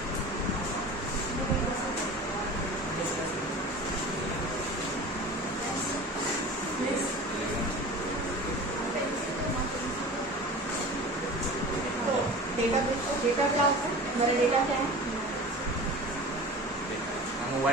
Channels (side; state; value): both; normal; correlation 0.37